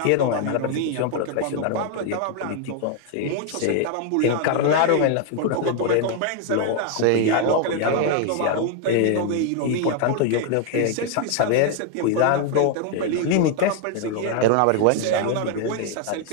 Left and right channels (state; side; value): different; both; correlation 0.00